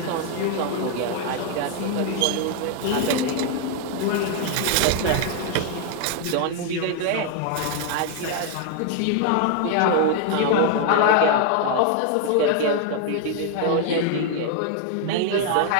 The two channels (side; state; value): both; different; correlation 0.00